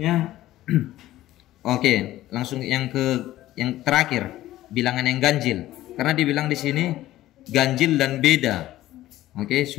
oke, langsung yang terakhir, bilangan yang ganjil. Karena dibilang di sini ganjil dan beda. Oke,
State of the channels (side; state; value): right; quieter; 15.0 dB